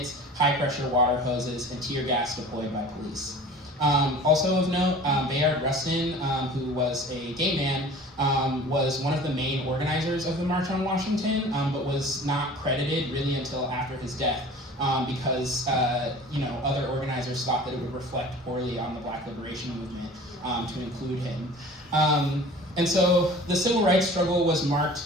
high-pressure water hoses, and tear gas deployed by police. Also of note, Bayard Rustin, who was a gay man, was one of the main organizers of the March on Washington, but was not credited really until after his death. Because other organizers thought that it would reflect poorly on the Black liberation movement to include him. And so the civil rights struggle was marked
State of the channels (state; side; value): normal; both; correlation 0.43